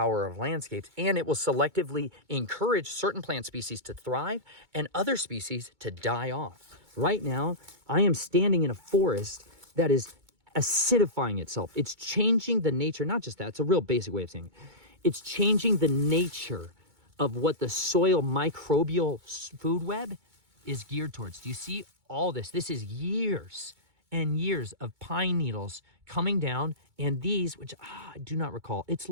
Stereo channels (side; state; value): left; late; 2.2 ms